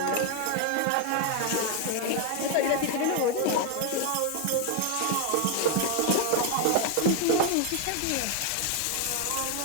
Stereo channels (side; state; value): both; different; correlation 0.01